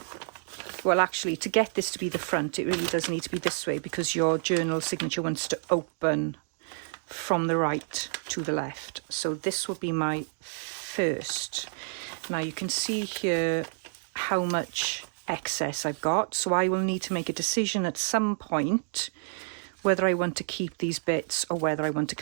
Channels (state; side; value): silent; left; digital silence